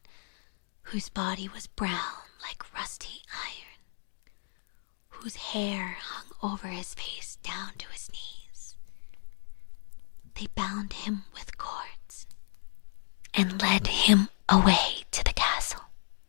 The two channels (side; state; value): right; silent; digital silence